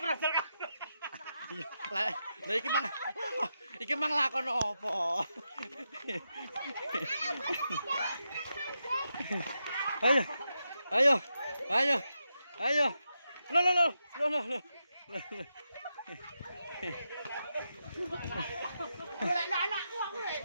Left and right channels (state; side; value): inverted; both; correlation -0.86